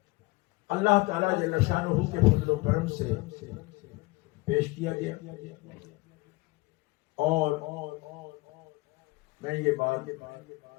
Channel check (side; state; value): right; quieter; 22.8 dB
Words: اللہ تعالیٰ جل شانہ کے فضل و کرم سے پیش کیا گیا، اور میں یہ بات